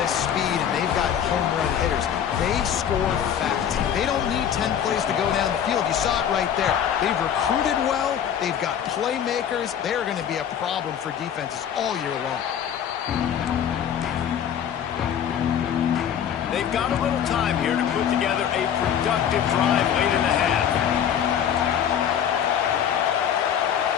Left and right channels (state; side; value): quieter; right; 9.0 dB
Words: of speed and they've got home run hitters. They score fast. They don't need 10 plays to go down the field. You saw it right there. They've recruited well. They've got playmakers. They're going to be a problem for defenses all year long. They've got a little time here to put together a productive drive late in the half.